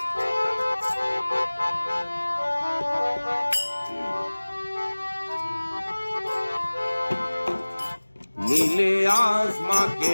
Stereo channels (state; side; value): inverted; both; correlation -1.00